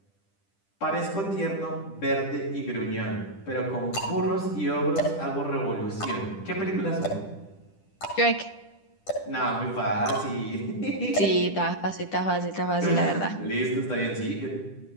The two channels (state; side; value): late; right; 10 ms